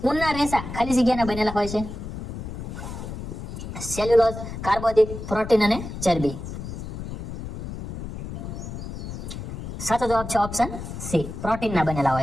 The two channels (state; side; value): noise; left; rumble, 8 dB below the sound